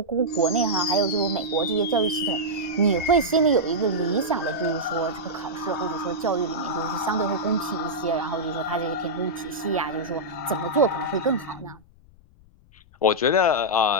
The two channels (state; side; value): noise; left; rumble, 26 dB below the sound